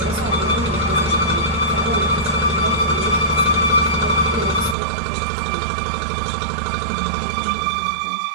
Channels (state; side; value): drops out; left; at 4.8 s